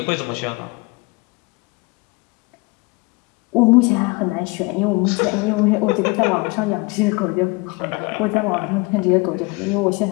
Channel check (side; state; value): right; quieter; 26.3 dB